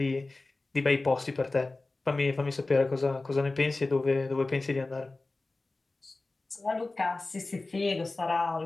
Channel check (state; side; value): quieter; right; 3.3 dB